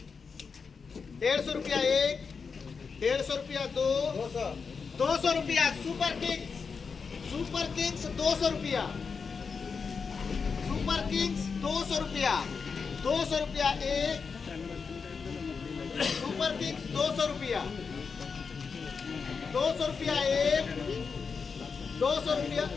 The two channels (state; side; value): quieter; right; 5.4 dB